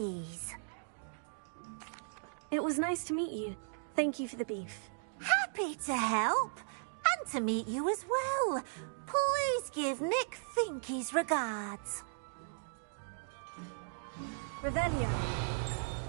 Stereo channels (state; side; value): silent; left; digital silence